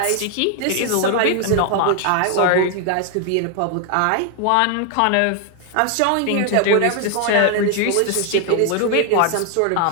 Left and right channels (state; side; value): different; both; correlation 0.00